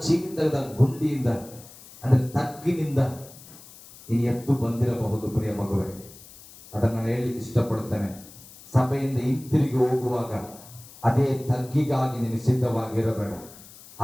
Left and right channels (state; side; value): noise; left; hiss, 20 dB below the sound